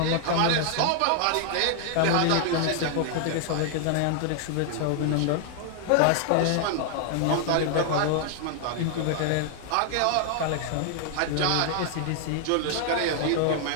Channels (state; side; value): different; both; correlation 0.00